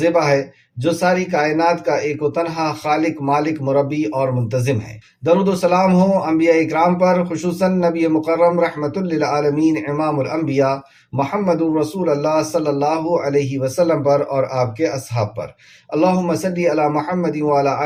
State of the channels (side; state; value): both; identical; correlation 1.00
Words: ہے، جو ساری کائنات کا ایک و تنہا خالق، مالک، مربی اور منتظم ہے۔ درود و سلام ہو انبیاء اکرام پر، خصوصاً نبی مکرم رحمت للعالمین امام الانبیاء محمد رسول اللہ صلی اللہ علیہ وسلم پر اور آپ کے اصحاب پر۔ اللہم صلی علی محمد وعلی